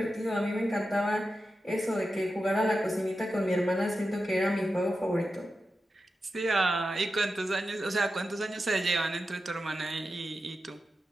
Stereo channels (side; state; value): both; normal; correlation 0.91